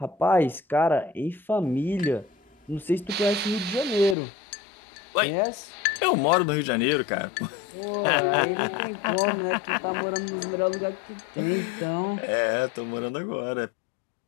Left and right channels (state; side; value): drops out; right; at 4.2 s